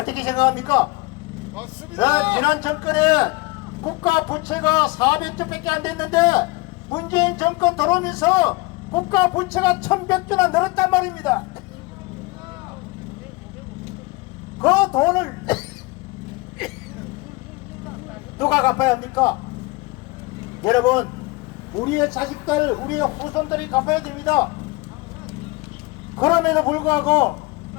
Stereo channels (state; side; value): quieter; right; 23.6 dB